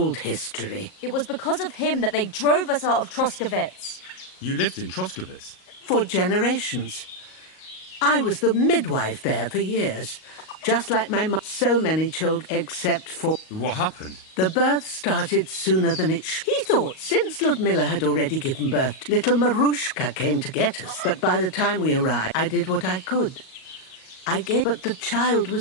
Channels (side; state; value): right; late; 38 ms